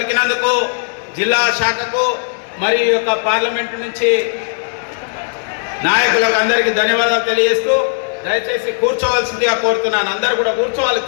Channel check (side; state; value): right; silent; 66 dB below the other